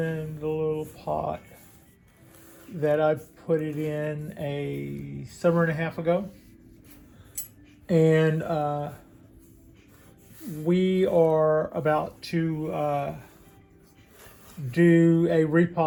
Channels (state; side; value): identical; both; correlation 1.00